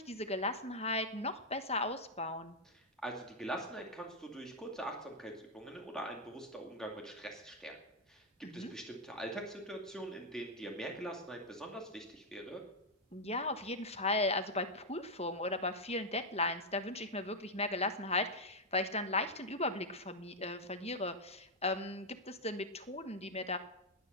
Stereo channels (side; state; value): both; normal; correlation -0.01